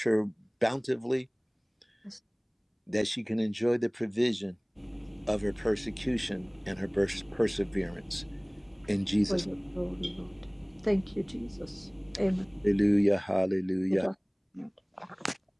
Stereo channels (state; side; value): identical; both; correlation 1.00